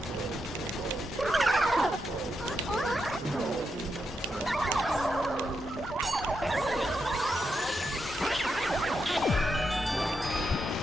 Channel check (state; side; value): normal; both; correlation 0.84